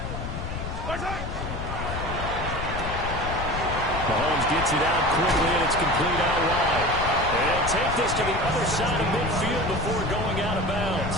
Mahomes gets it out quickly, and it's complete out wide. And they'll take this to the other side of midfield before going out of bounds.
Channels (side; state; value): left; noise; rumble, 6 dB below the sound